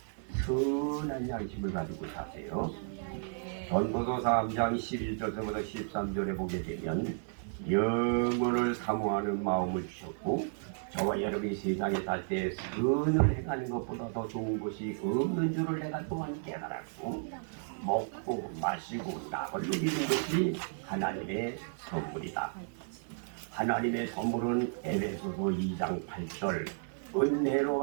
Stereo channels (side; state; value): left; silent; digital silence